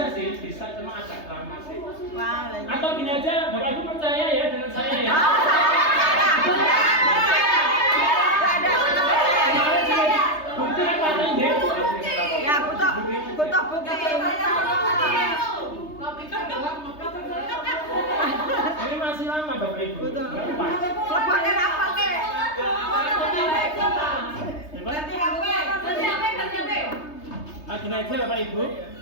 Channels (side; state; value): right; late; 3.3 ms